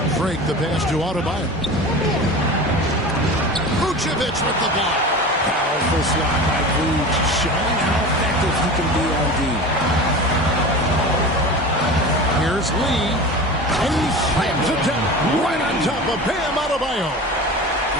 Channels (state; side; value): normal; both; correlation 0.33